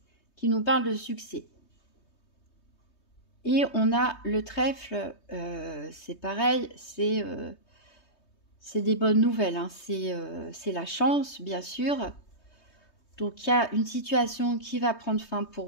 qui nous parle de succès. Et on a le trèfle, c'est pareil, c'est des bonnes nouvelles, hein. C'est la chance, bien sûr. Donc, il y a une situation qui va prendre fin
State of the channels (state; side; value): late; right; 3.2 ms